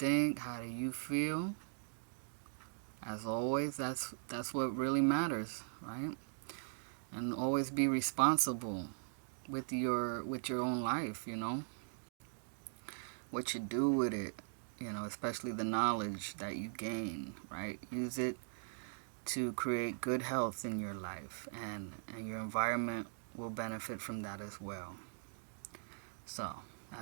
How do you feel? As always, that's what really matters, right? And always be responsible with your own life, what you do with it, especially the knowledge that you gain, right? Use it to create good health in your life, and your environment will benefit from that as well. So, I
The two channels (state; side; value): silent; left; digital silence